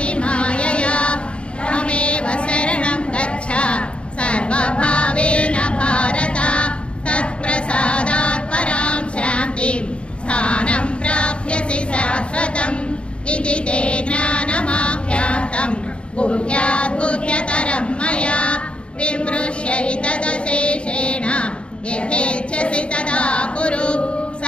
मायया त्वमेव शरणं गच्छ सर्वभावेन भारत तत्प्रसादात् परां शान्तिं स्थानं प्राप्स्यसि शाश्वतम् इति ते ज्ञानमाख्यातं गुह्यात् गुह्यतरं मया विमृश्यैतदशेषेण यथेच्छसि तदा कुरु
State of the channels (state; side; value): late; right; 0.057 ms